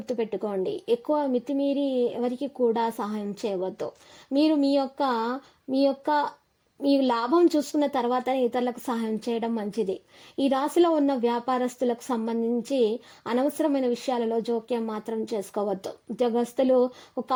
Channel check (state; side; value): identical; both; correlation 1.00